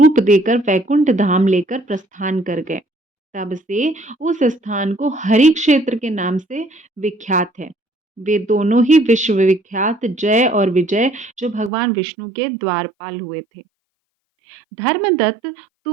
देकर वैकुंठ धाम लेकर प्रस्थान कर गए। तब से उस स्थान को हरि क्षेत्र के नाम से विख्यात है। वे दोनों ही विश्व विख्यात जय और विजय जो भगवान विष्णु के द्वारपाल हुए थे। धर्मदत्त,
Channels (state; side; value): drops out; left; at 11.7 s